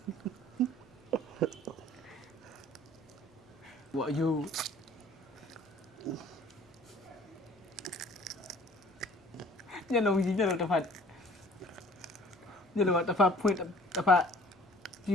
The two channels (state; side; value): normal; both; correlation 0.52